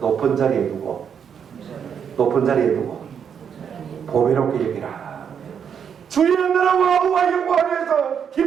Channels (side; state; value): left; quieter; 7.6 dB